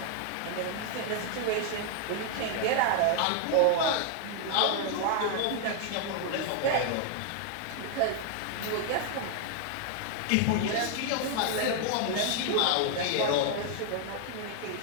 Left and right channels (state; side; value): different; both; correlation 0.00